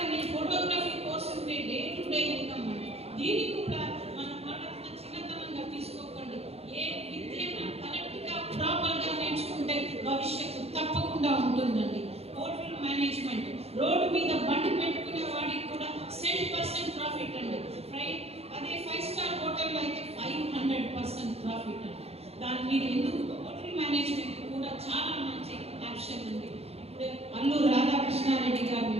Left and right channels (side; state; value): left; late; 0.29 ms